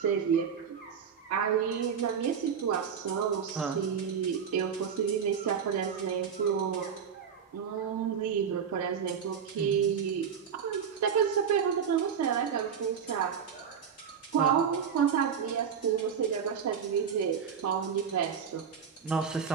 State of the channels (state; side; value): quieter; left; 7.3 dB